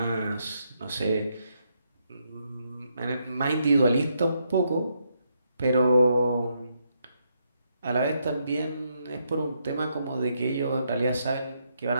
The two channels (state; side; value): inverted; both; correlation -0.78